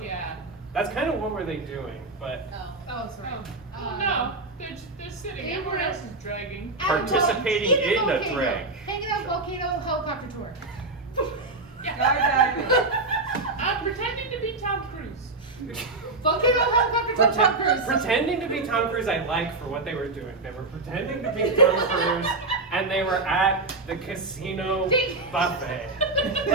Yeah. That's kind of what were they doing, but Oh, sorry. No, they're sitting. they Everyone were- else is dragging. Participating in a drag. Hanging out volcano helicopter tour. I'm pretending to be Tom Cruise. Volcano helicopter tour. Tom Cruise. pretending to be Tom Cruise, I like for what they were doing. They were pretending to be Tom Cruise, and they were at the casino buffet.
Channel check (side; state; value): left; quieter; 3.3 dB